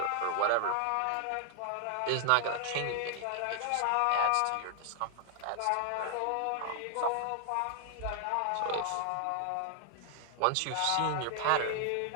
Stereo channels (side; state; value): both; different; correlation -0.01